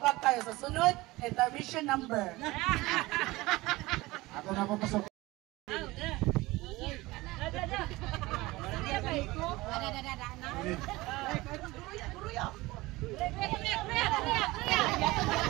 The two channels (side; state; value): left; quieter; 20.4 dB